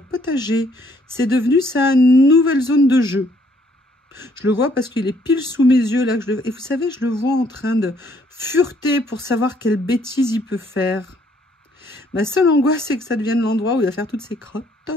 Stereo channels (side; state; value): both; normal; correlation 0.66